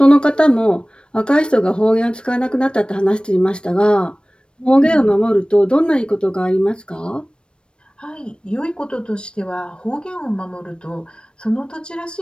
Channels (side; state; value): right; late; 0.055 ms